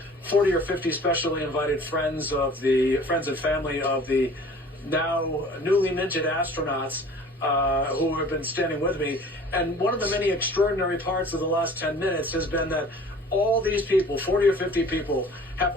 40 or 50 specially invited friends and family of the now newly minted astronauts who have been standing with me. And one of the many extraordinary parts of the last 10 minutes has been that all these people, 40 or 50 people, have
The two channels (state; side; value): normal; both; correlation 0.47